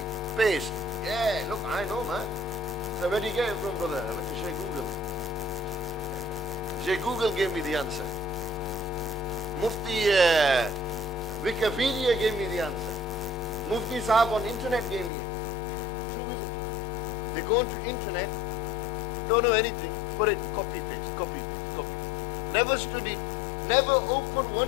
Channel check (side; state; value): right; drops out; at 15.1 s